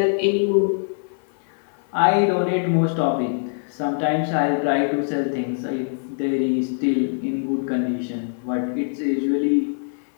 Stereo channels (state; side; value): silent; right; 60 dB below the other